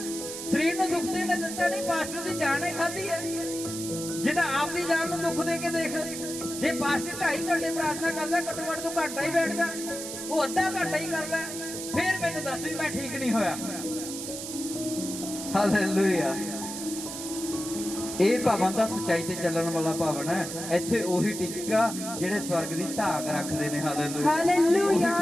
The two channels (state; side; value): noise; right; hiss, 7 dB below the sound